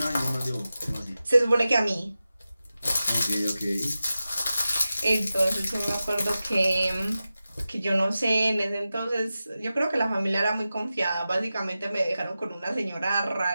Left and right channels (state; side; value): inverted; both; correlation -0.94